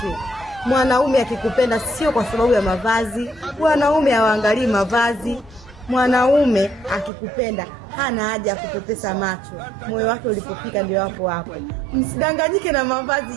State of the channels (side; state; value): left; drops out; at 7.1 s